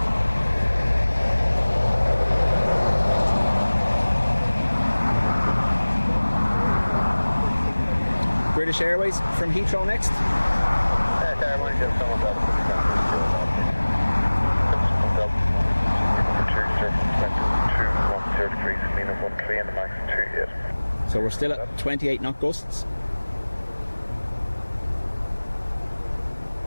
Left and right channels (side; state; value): both; inverted; correlation -1.00